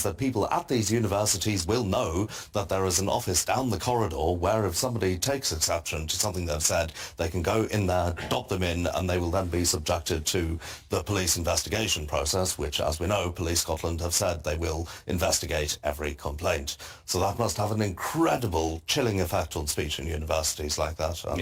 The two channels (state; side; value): identical; both; correlation 1.00